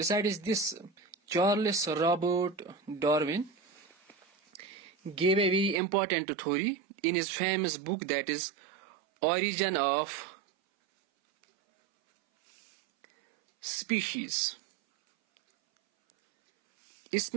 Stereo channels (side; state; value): left; drops out; at 5.8 s